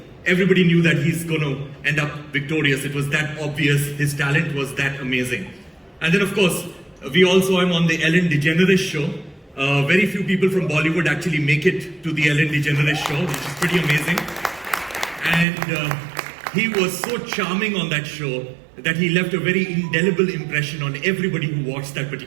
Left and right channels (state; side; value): drops out; left; at 15.5 s